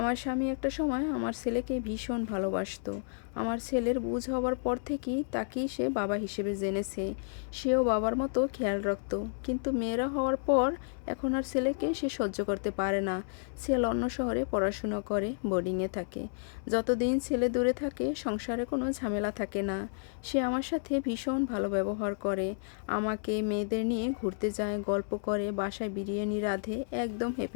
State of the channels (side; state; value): right; silent; 57 dB below the other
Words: স্বামী একটা সময় আমার ছেলেকে ভীষণ ভালোবাসতো। আমার ছেলের বুঝ হবার পর থেকেই তাকেই সে বাবা হিসেবে জেনেছে। সেও বাবার মতো খেয়াল রাখতো। কিন্তু মেয়েরা হওয়ার পর এখন আর ছেলেকে সে সহ্য করতে পারে না। ছেলে অন্য শহরে পড়াশোনা করে, বোর্ডিংয়ে থাকে। যতদিন ছেলে দূরে থাকে সংসারে কোনো ঝামেলা থাকে না। সে আমার সাথে ভীষণ ভালো ব্যবহার করে। আমাকে মেয়েদের নিয়ে ঘুরতে যায়, গল্প করে, বাসায় বিরিয়ানি রাঁধে। একদম